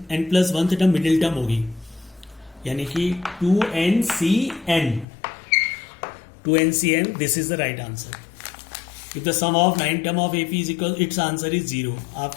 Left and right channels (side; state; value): right; drops out; at 5.1 s